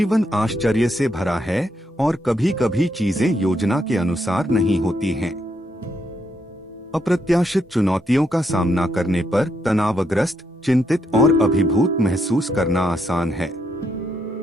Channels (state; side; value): normal; both; correlation 0.78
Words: आश्चर्य से भरा है और कभी कभी चीजें योजना के अनुसार नहीं होती हैं। अप्रत्याशित चुनौतियों का सामना करने पर तनावग्रस्त, चिंतित और अभिभूत महसूस करना आसान है।